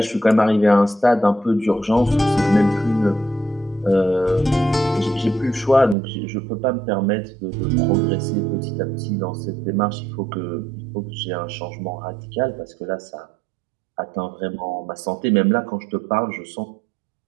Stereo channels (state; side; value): drops out; left; at 6.0 s